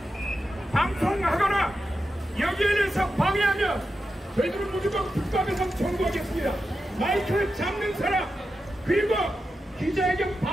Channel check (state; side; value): normal; both; correlation 0.90